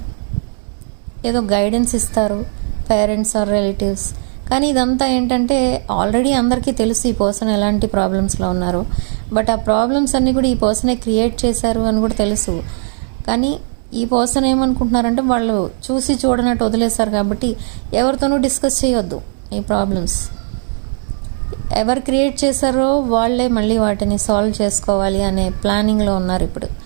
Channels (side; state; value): left; silent; digital silence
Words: ఏదో గైడెన్స్ ఇస్తారు, పేరెంట్స్ ఆర్ రిలేటివ్స్. కానీ ఇదంతా ఏంటంటే, ఆల్రెడీ అందరికీ తెలుసు ఈ పర్సన్ ఎలాంటి ప్రాబ్లమ్స్లో ఉన్నారు. బట్ ఆ ప్రాబ్లమ్స్ అన్నీ కూడా ఈ పర్సనే క్రియేట్ చేశారు అని కూడా తెలుసు. కానీ ఈ పర్సన్ ఏమనుకుంటున్నారంటే, వాళ్ళు చూసి చూడనట్టు వదిలేశారు కాబట్టి ఎవరితోనూ డిస్కస్ చేయొద్దు ఈ ప్రాబ్లమ్స్. ఎవరు క్రియేట్ చేశారో వాళ్ళే మళ్ళీ వాటిని సాల్వ్ చేసుకోవాలి అనే ప్లానింగ్లో ఉన్నారు ఇప్పుడు.